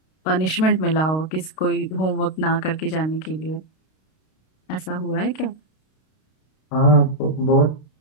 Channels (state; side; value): late; right; 32 ms